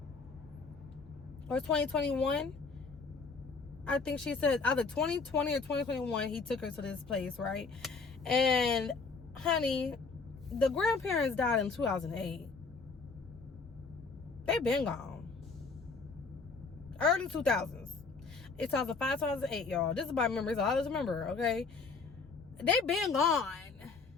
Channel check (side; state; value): right; quieter; 4.5 dB